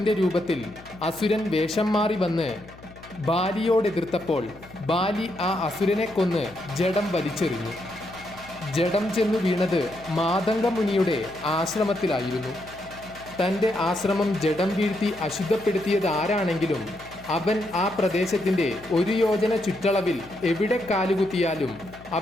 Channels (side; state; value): left; noise; hum, 20 dB below the sound